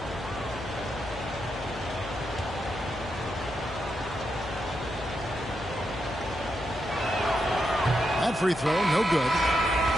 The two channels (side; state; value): left; noise; hum, 12 dB below the sound